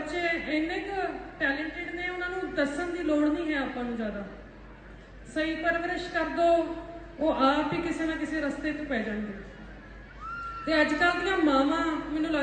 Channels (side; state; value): both; identical; correlation 1.00